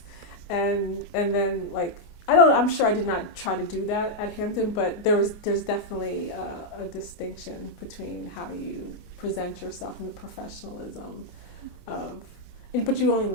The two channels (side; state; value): right; late; 25 ms